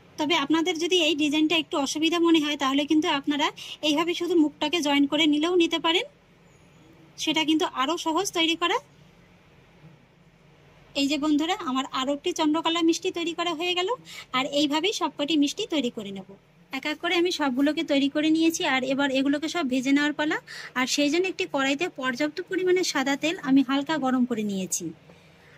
তবে আপনাদের যদি এই ডিজাইনটা একটু অসুবিধা মনে হয়, তাহলে কিন্তু আপনারা এইভাবে শুধু মুখটাকে জয়েন করে নিলেও নিতে পারেন, সেটা কিন্তু আরও সহজ তৈরি করা। এই যে বন্ধুরা আমার আরও একটি চন্দ্রকলা মিষ্টি তৈরি করা হয়ে গেল। আর এইভাবেই সবকটি মিষ্টি তৈরি করে নেব। এক এক করে আমি সবগুলোকে তৈরি করে নিয়েছি। আর এবার এগুলোকে সব ভেজে নেওয়ার পালা। আর সেই জন্য একটি কড়াইতে পর্যাপ্ত পরিমাণে সাদা তেল আমি হালকা গরম করে নিয়েছি।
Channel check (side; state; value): both; identical; correlation 1.00